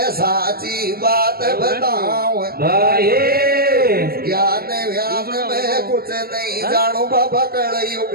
साची बात बताऊं भाई ज्ञान व्यान में कुछ नहीं जानू बाबा कल युग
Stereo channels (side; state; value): left; late; 0.44 ms